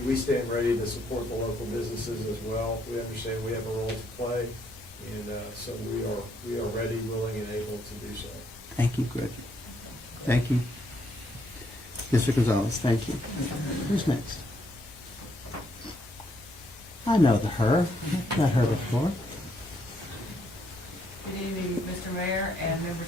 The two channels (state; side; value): normal; both; correlation 0.73